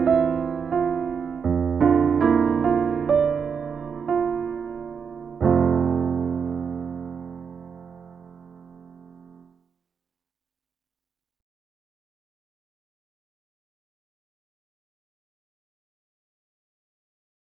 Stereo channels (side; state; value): left; quieter; 6.4 dB